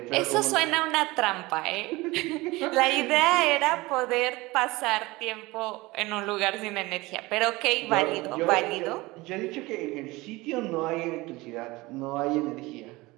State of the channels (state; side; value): quieter; left; 21.4 dB